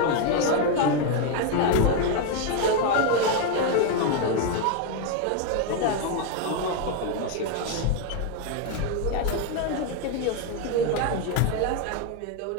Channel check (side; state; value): both; different; correlation 0.01